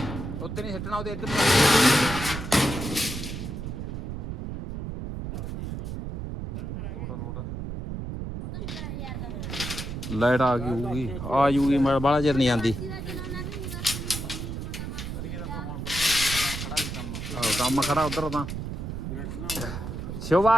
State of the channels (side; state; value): right; noise; rumble, 6 dB below the sound